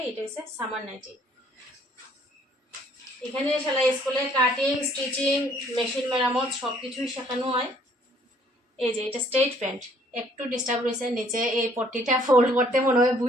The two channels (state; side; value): normal; both; correlation 0.61